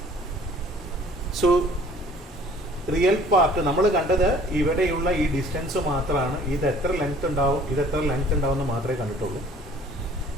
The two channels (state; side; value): normal; both; correlation 0.53